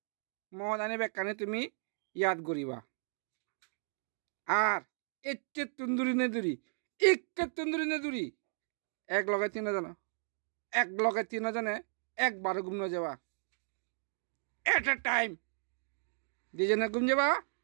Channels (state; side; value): silent; left; digital silence